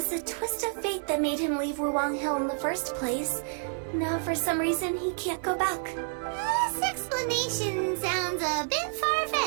a twist of fate that made him leave Wuwang Hill in the first place. Now, for some reason, he can't go back. This explanation sounds a bit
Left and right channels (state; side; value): silent; left; 59 dB below the other